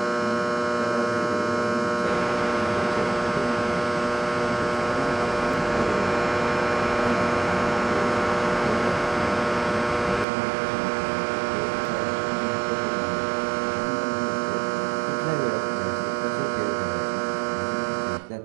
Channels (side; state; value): left; drops out; at 10.2 s